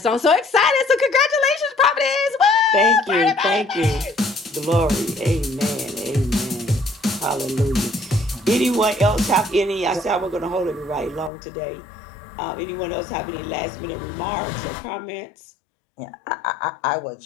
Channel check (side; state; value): right; drops out; at 11.3 s